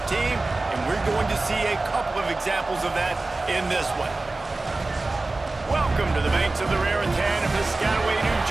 team, and we're going to see a couple of examples of that in this one. Welcome to the banks of the Raritan in Piscataway, New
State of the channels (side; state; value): left; quieter; 3.2 dB